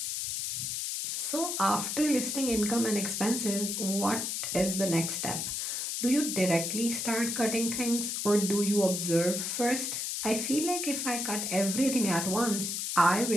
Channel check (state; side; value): noise; left; hiss, 2 dB below the sound